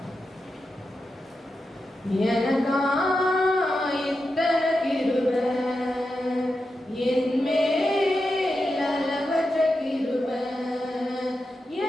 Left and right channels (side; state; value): both; normal; correlation 0.89